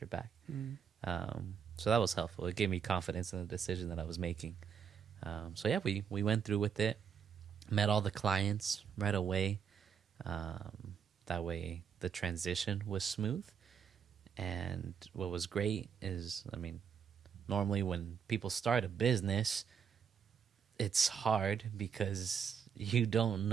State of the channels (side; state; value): left; quieter; 7.3 dB